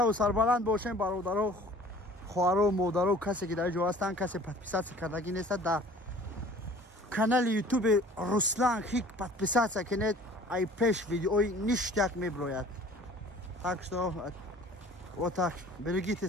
сарбаланд бошем бародаро, хоҳаро, модаро, касе ки дар ҷо ҳастанд, касе подписатсия кардагӣ нестад, дар канали ютуби Руслан Хик подписатсия кунед. ай пеш видеои ништяк меброяд. так что вот так. берегите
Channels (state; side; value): normal; both; correlation 0.49